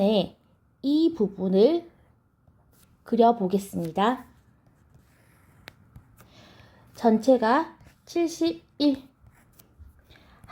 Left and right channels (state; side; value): identical; both; correlation 1.00